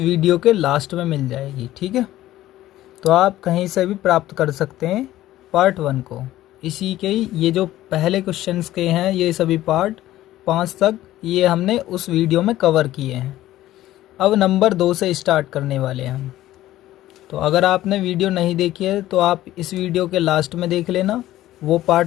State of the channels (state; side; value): quieter; right; 14.7 dB